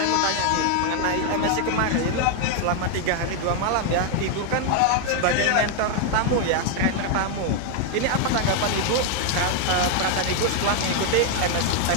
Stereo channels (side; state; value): both; different; correlation 0.00